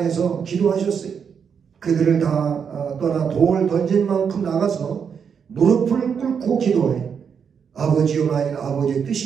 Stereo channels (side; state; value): left; quieter; 6.9 dB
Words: 기도하셨어요. 그들을 다 떠나 돌 던진 만큼 나가서 무릎을 꿇고 기도해. 아버지여, 만일 아버지의